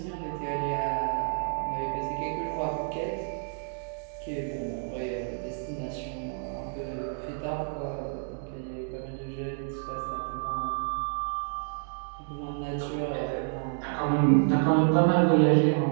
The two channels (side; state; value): left; silent; digital silence